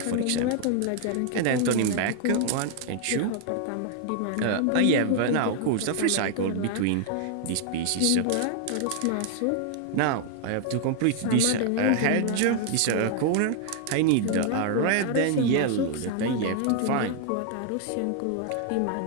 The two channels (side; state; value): both; different; correlation 0.00